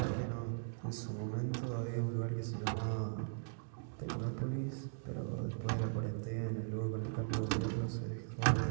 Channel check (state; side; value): silent; left; digital silence